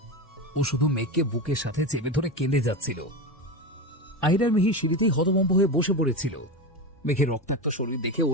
ও শুধু মেঘকে বুকের সাথে চেপে ধরে কেঁদে যাচ্ছিল। আহির আর মিহির সিঁড়িতেই হতভম্ব হয়ে বসে পড়েছিল। মেঘের রক্তাক্ত শরীর দেখে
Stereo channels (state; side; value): normal; both; correlation 0.20